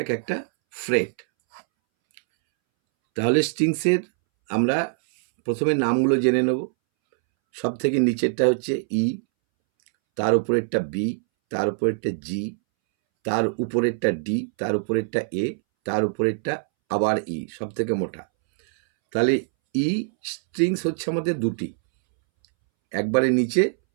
এক একটা ফ্রেট। তাহলে স্ট্রিংসের আমরা প্রথমে নামগুলো জেনে নেব। সব থেকে নিচেরটা হচ্ছে ই, তার উপরেরটা বি, তার উপরেরটা জি, তার উপরেরটা ডি, তার উপরেরটা এ, তার উপরেরটা আবার ই, সব থেকে মোটা। তাহলে ই স্ট্রিংস হচ্ছে আমাদের দুটি, একবারে নিচে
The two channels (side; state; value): left; silent; 63 dB below the other